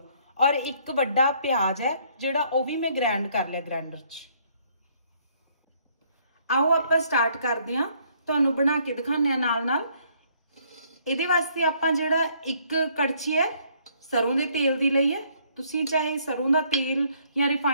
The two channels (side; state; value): both; inverted; correlation -0.65